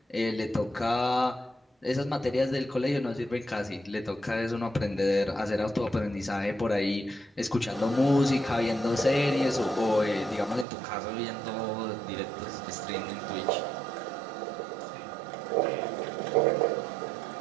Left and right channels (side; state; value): left; drops out; at 10.7 s